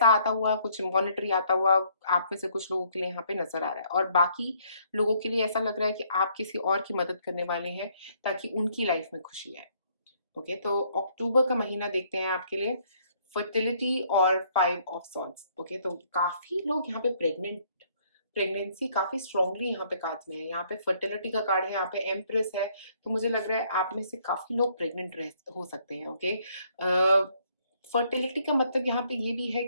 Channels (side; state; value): both; inverted; correlation -0.66